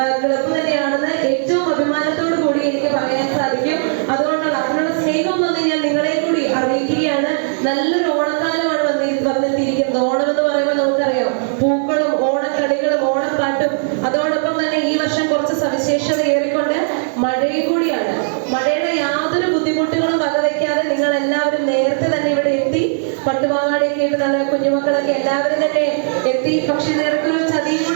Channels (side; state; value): left; silent; digital silence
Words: ക്ലബ് തന്നെയാണെന്ന് ഏറ്റവും അഭിമാനത്തോടു കൂടി എനിക്ക് പറയാൻ സാധിക്കും. അതുകൊണ്ടാണ് അതിനുള്ള സ്നേഹം വന്ന് ഞാൻ നിങ്ങളെ കൂടി അറിയിക്കുകയാണ്. നല്ലൊരു ഓണക്കാലമാണ് വന്നെത്തിയിരിക്കുന്നത്. ഓണം എന്ന് പറയുമ്പോൾ നമുക്കറിയാം പൂക്കളും ഓണക്കളികളും ഓണപ്പാട്ടും, അതോടൊപ്പം തന്നെ ഈ വർഷം കുറച്ച് സവിശേഷത ഏറിക്കൊണ്ട് മഴയും കൂടിയാണ്. മഴയുടെ യാതൊരു ബുദ്ധിമുട്ടുകളും വകവയ്ക്കാതെ നിങ്ങൾ എല്ലാവരും നേരത്തെ തന്നെ ഇവിടെ എത്തി. പട്ടുപാവാടയൊക്കെ ഇട്ട് നല്ല കുഞ്ഞുമക്കളൊക്കെ എല്ലാവരും തന്നെ എത്തി. പക്ഷെ നേർക്കൊരു ചതിയും